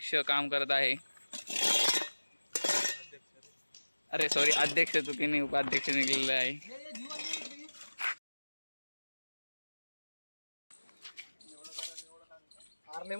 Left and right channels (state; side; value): inverted; both; correlation -1.00